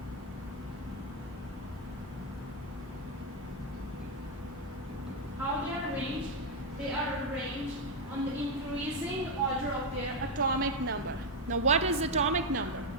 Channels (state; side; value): normal; both; correlation 0.03